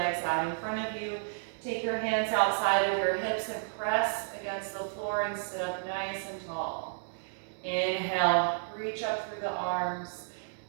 out in front of you. Take your hands outside of your hips and press against the floor and sit up nice and tall. Inhale, reach up through the arms.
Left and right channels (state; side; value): silent; left; digital silence